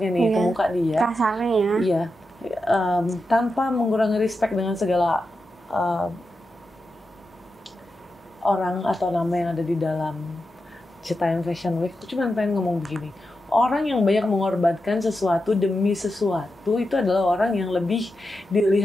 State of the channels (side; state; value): both; normal; correlation 0.89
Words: nih ke muka dia. Kasarnya ya. Iya, tanpa mengurangi respect dengan segala orang atau nama yang ada di dalam Citayam Fashion Week. Aku cuma pengen ngomong begini. Orang yang banyak mengorbankan sesuatu demi sesuatu itu adalah orang yang lebih